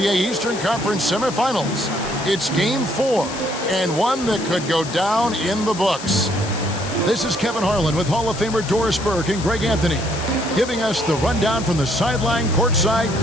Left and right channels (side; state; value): left; noise; hiss, 12 dB below the sound